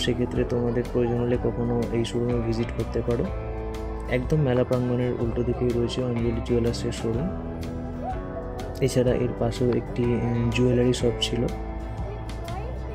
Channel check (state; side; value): identical; both; correlation 1.00